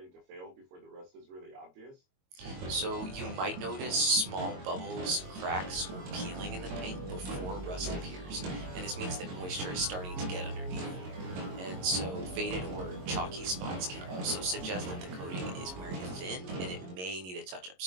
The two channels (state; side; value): late; left; 22 ms